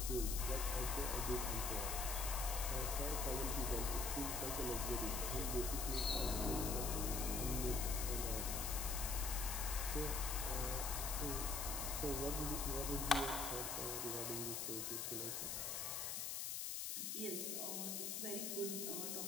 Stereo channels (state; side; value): noise; left; hiss, 2 dB below the sound